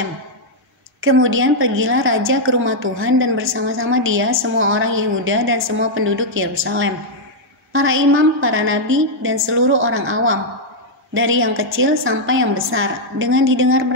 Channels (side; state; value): both; normal; correlation -0.03